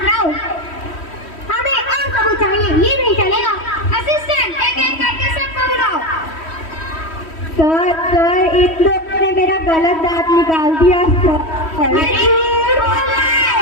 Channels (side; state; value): right; late; 3.1 ms